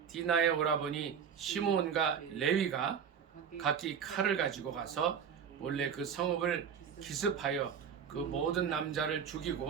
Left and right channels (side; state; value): left; quieter; 7.4 dB